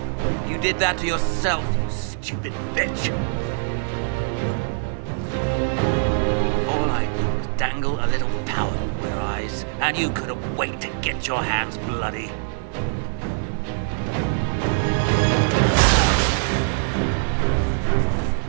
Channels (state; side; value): silent; left; 63 dB below the other